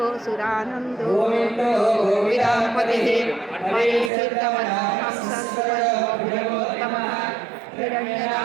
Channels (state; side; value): drops out; left; at 4.1 s